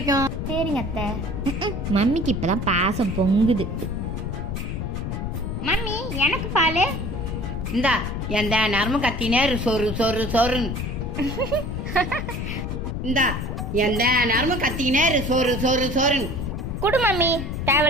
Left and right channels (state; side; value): noise; left; rumble, 4 dB below the sound